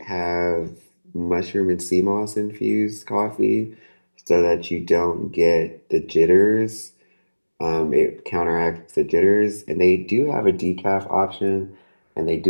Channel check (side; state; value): both; inverted; correlation -1.00